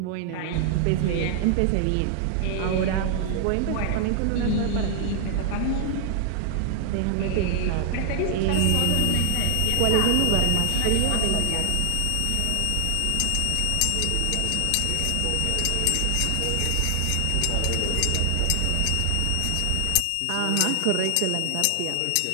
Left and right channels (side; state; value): both; different; correlation 0.00